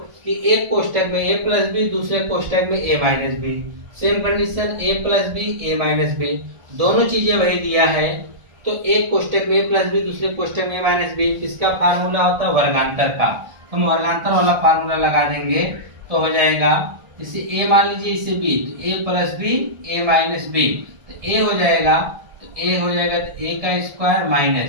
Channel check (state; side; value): late; left; 1.4 ms